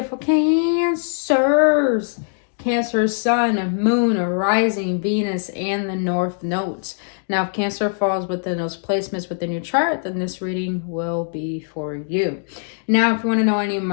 Cancers. Cancer, Sun, Moon, Rising, Venus, and the North Nodes. Now, if Cancer falls within those placements within your chart, then this reading will be for you. Now, if you want to know any of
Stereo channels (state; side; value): silent; right; digital silence